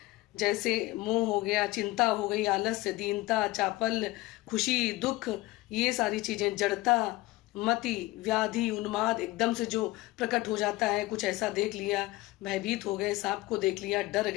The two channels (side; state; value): right; quieter; 19.3 dB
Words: जैसे मोह हो गया, चिंता हो गई, आलस्य, दीनता, चापल, खुशी, दुख, ये सारी चीजें, जड़ता, मति, व्याधि, उन्माद एकदम से जो प्रकट हो जाता है, कुछ ऐसा देख लिया, भयभीत हो गए, सांप को देख लिया, डर